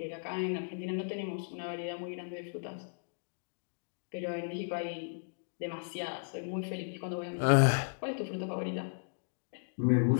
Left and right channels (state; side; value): silent; right; digital silence